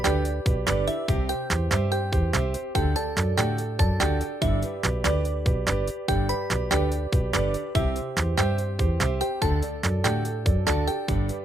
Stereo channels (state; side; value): normal; both; correlation 0.82